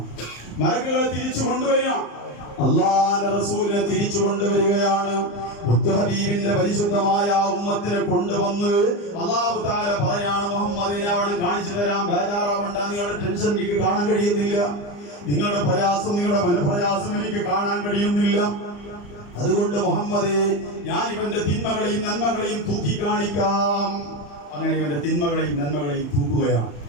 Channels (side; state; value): right; late; 34 ms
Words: മലക്കുകൾ തിരിച്ചു കൊണ്ടുവരിക, അല്ലാഹുവിന്റെ റസൂലിനെ തിരിച്ചു കൊണ്ടുവരികയാണ്. മുത്തുഹബീബിന്റെ പരിശുദ്ധമായ ഉമ്മത്തിനെ കൊണ്ടുവന്ന് അല്ലാഹു തആല പറയാണ്, മുഹമ്മദിനെ അവിടെ കാണിച്ചു തരാം, ബേജാറാവണ്ട, നിങ്ങളുടെ ടെൻഷൻ എനിക്ക് കാണാൻ കഴിയുന്നില്ല, നിങ്ങളുടെ പ്രയാസം, നിങ്ങളുടെ മനപ്രയാസം എനിക്ക് കാണാൻ കഴിയുന്നില്ല. അതുകൊണ്ട് മുഹമ്മദേ, ഞാൻ ഇവന്റെ തിന്മകളെയും നന്മകളെയും തൂക്കി കാണിക്കാം. അങ്ങനെ ഇവന്റെ തിന്മകളെയും നന്മകളെയും തൂക്കുകയാണ്.